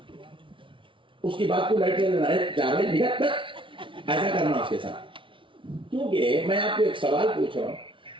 اس کی بات کو لائٹ لینا ہے، ایسا کرنا اس کے ساتھ۔ کیونکہ میں آپ کو ایک سوال پوچھ رہا ہوں،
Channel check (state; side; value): late; left; 0.25 ms